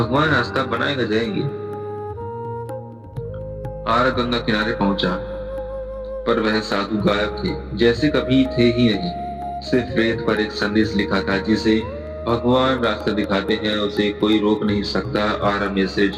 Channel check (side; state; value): both; identical; correlation 1.00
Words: रास्ता बनाएगा जाएंगे। आरव गंगा किनारे पहुंचा, पर वह साधु गायब थे, जैसे कभी थे ही नहीं। सिर्फ रेत पर एक संदेश लिखा था, जिसे भगवान रास्ता दिखाते हैं उसे कोई रोक नहीं सकता। आरव ने सिर